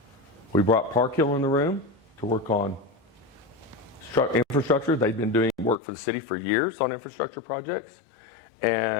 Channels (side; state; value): right; drops out; at 5.8 s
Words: We brought Park Hill in the room to work on infrastructure. They'd been doing work for the city for years on infrastructure projects.